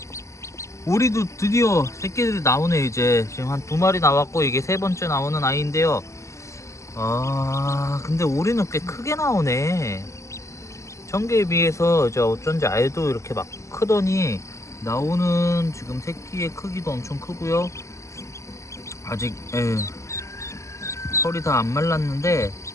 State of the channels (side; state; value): right; late; 0.14 ms